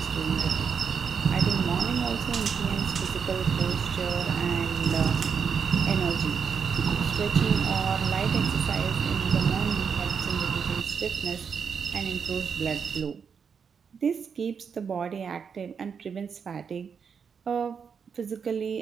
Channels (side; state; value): left; quieter; 6.5 dB